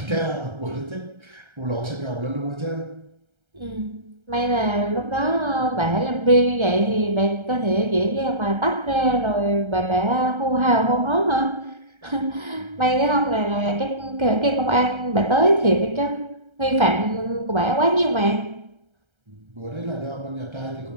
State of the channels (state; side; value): late; left; 1.3 ms